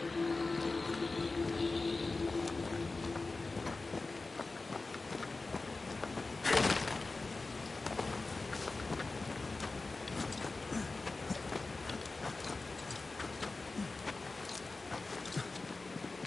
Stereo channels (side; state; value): right; quieter; 3.6 dB